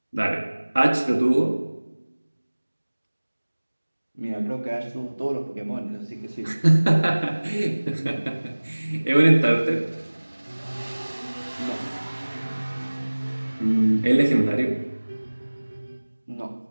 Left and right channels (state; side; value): inverted; both; correlation -1.00